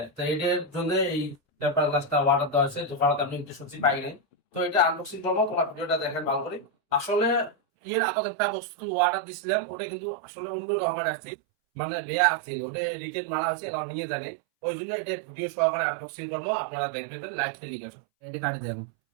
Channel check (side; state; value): left; drops out; at 7.6 s